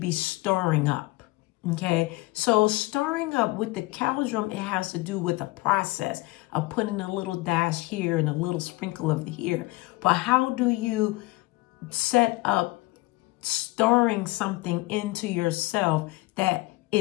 stirring up. Okay. So stirring up with the cauldron, it has to do with a process of putting a little dash here and a little sprinkle of here. But how do you set up stirring something into yourself that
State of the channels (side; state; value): right; quieter; 21.5 dB